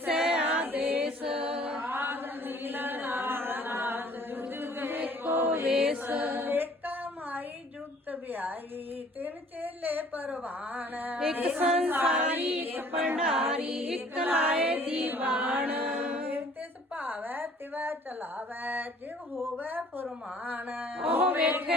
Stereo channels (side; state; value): both; normal; correlation 0.55